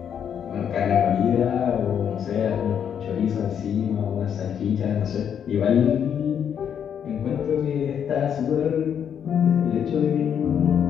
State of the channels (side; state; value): right; quieter; 8.4 dB